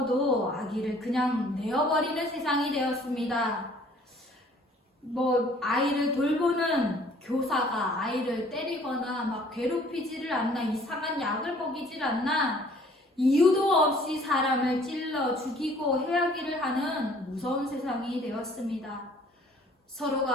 아기를 그냥 내어버리는 세상이 되었습니다. 아이를 돌보는 교사가 아이를 때리거나 막 괴롭히지를 않나, 이상한 약을 먹이질 않나, 이유도 없이 사람을 찔러 죽이고 해하기를 하는 무서운 세상이 되었습니다.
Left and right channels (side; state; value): both; normal; correlation 0.56